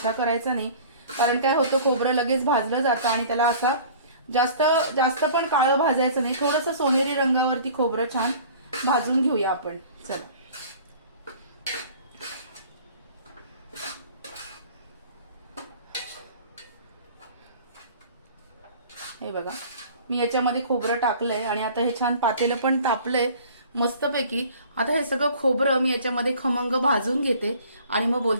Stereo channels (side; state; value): both; inverted; correlation -0.47